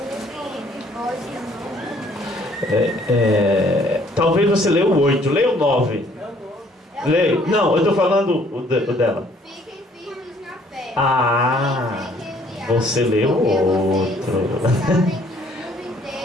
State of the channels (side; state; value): both; normal; correlation 0.61